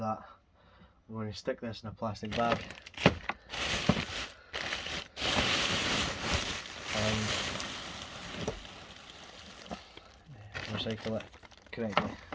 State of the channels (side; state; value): both; identical; correlation 1.00